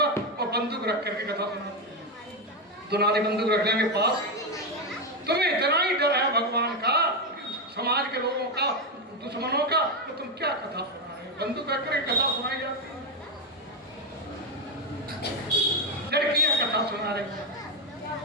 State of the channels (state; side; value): normal; both; correlation 0.07